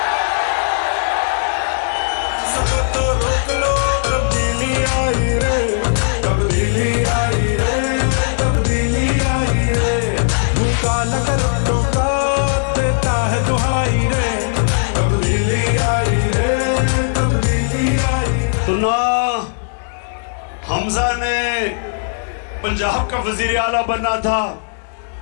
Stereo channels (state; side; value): silent; right; digital silence